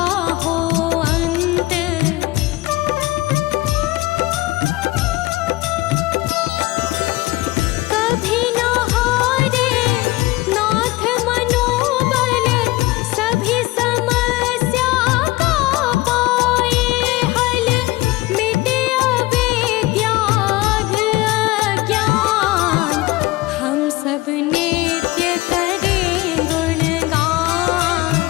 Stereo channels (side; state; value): right; quieter; 19.7 dB